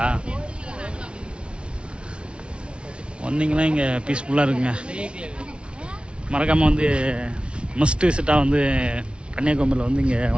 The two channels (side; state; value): left; late; 0.058 ms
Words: வந்தீங்கன்னா இங்கே பீஸ்ஃபுல்லாக இருக்குங்க. மறக்காமல் வந்து மஸ்ட் விசிட்டாக வந்து கன்னியாகுமரியில் வந்து இங்கே